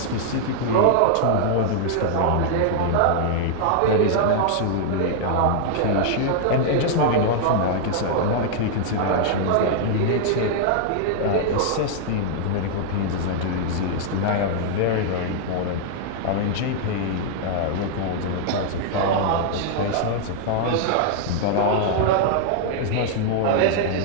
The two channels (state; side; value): different; both; correlation -0.01